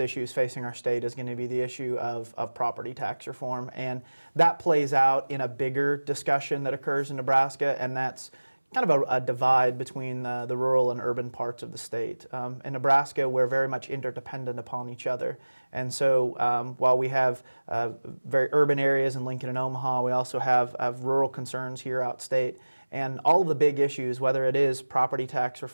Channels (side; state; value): both; inverted; correlation -1.00